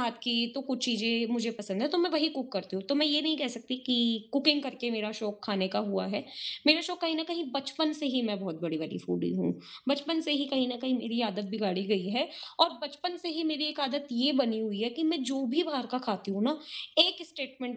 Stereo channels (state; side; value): identical; both; correlation 1.00